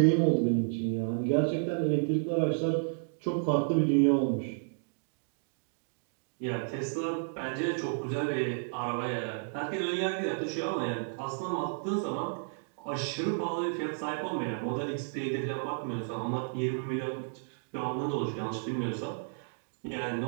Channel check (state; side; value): silent; left; digital silence